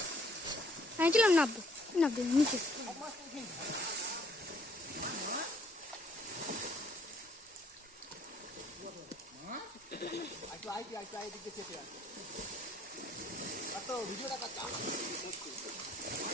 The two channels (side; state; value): both; normal; correlation 0.63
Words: আমি চলাম নাববো নাববো নিচে।